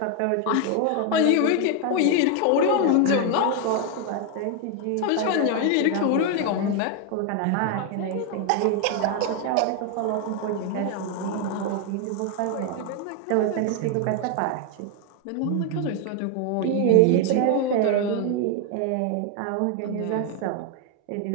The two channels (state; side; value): different; both; correlation 0.01